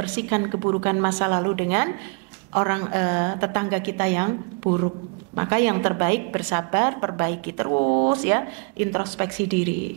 keburukan masa lalu dengan orang tetangga kita yang buruk. Maka yang terbaik bersabar, perbaiki terus ya, introspeksi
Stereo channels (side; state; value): left; quieter; 33.9 dB